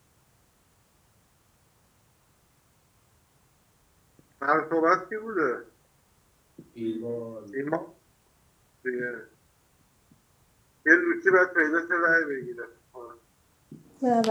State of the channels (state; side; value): identical; both; correlation 1.00